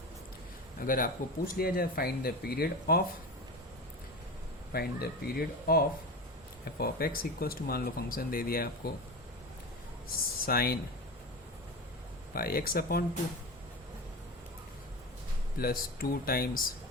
अगर आपको पूछ लिया जाए find the period of f of x equals to, मान लो फंक्शन दे दिया है आपको sine pi x upon 2 plus 2 times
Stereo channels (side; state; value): both; normal; correlation 0.26